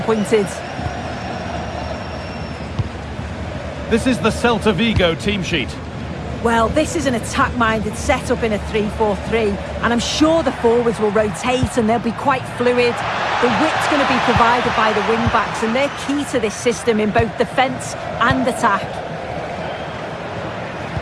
This is the Celta Vigo team sheet. Well, this is an attack-minded setup in a 3-4-3, and I'm sure the forwards will rotate and they'll be quite fluid. The width's going to be provided by the wing-backs, and they're key to this system in both defence and attack.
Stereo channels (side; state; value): both; identical; correlation 1.00